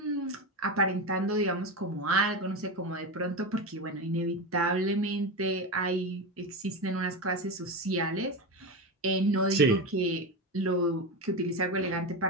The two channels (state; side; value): normal; both; correlation 0.18